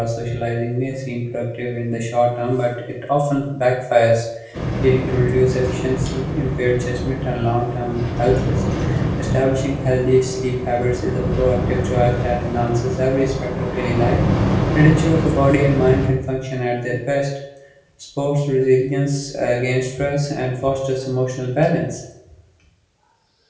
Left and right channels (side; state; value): both; identical; correlation 1.00